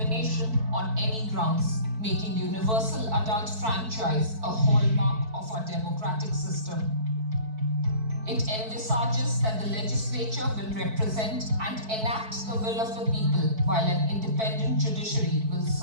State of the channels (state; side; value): late; left; 4.6 ms